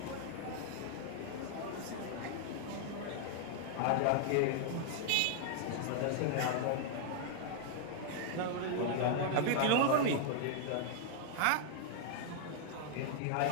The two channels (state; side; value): different; both; correlation 0.00